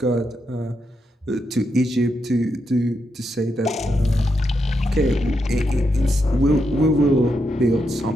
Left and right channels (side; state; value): both; normal; correlation 0.83